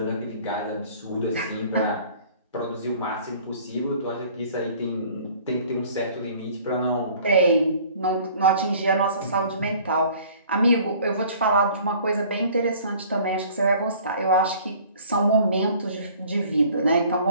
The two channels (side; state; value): both; inverted; correlation -0.52